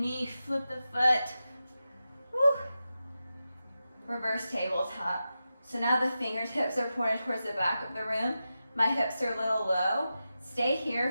flip the foot. Woo. Reverse tabletop. So now the fingertips are pointed towards the back of the room. My hips are a little low. Stay here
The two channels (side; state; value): both; inverted; correlation -0.91